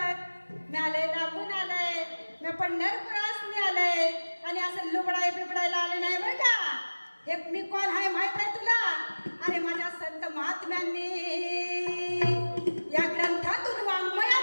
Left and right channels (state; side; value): inverted; both; correlation -1.00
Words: मी आलंय लांबून आलंय, मी पंढरपुरासनी आलंय आणि असं लुबडाय बिबडायला आले नाही बरं का. हे मी कोण आहे माहित आहे तुला? अरे माझ्या संत महात्म्यांनी या ग्रंथातून